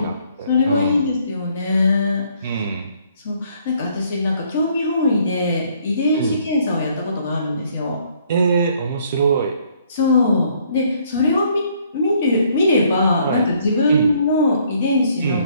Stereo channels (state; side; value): inverted; both; correlation -0.65